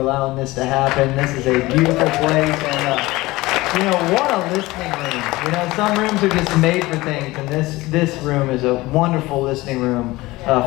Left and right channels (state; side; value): quieter; right; 19.9 dB